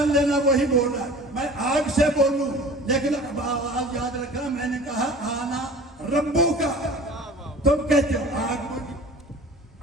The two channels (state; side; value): normal; both; correlation 0.42